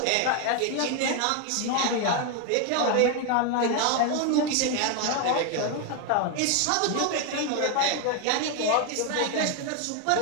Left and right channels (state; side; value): different; both; correlation 0.01